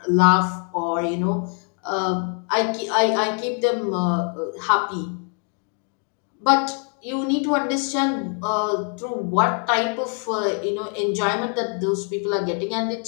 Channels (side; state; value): right; quieter; 39.8 dB